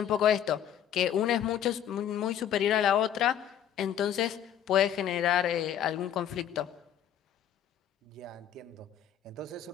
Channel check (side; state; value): right; quieter; 9.9 dB